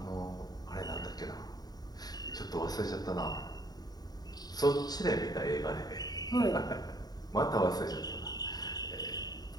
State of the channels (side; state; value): right; late; 0.19 ms